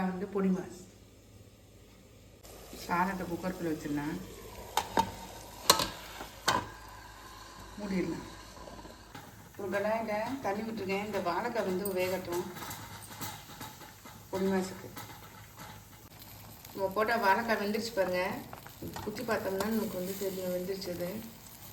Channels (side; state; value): both; identical; correlation 1.00